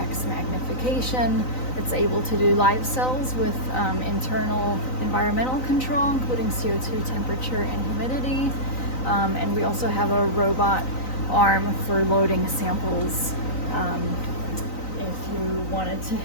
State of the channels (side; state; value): right; late; 3.9 ms